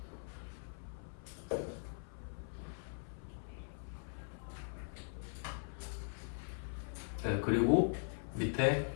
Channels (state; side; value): silent; right; 51 dB below the other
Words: 네, 그리고 밑에